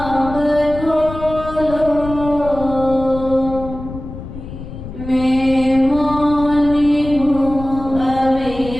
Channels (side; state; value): left; noise; rumble, 11 dB below the sound